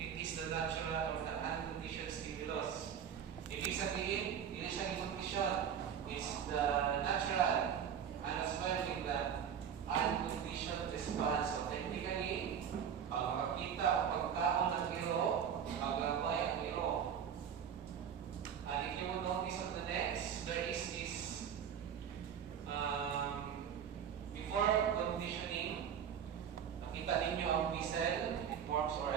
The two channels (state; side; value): quieter; left; 8.3 dB